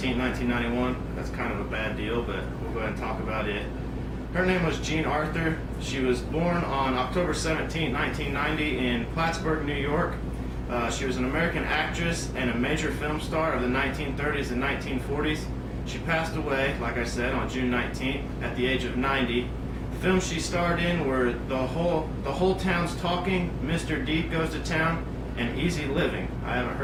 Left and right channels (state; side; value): identical; both; correlation 1.00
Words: 1991. That's kind of a bad deal, but we'll go ahead and talk about it. Her name was Jean Arthur. She was born on October 17, 1990 in Plattsburgh, New York. She was an American actress and a major film star of the 1930s and 1940s. She passed away, like I said, on June 19th at the age of 90. The films she starred in were The Whole Town's Talking, Mr. Deep Goes to Town, and Easy Living. I haven't